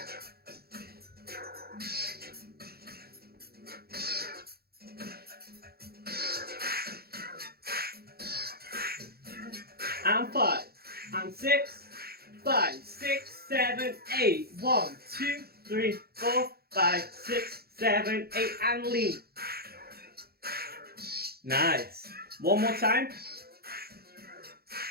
and 5, and 6, 5, 6, 7, 8. 1, 2, 3, 4, 5, 6, 7, 8, and lean. Nice. One more time.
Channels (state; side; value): late; left; 0.45 ms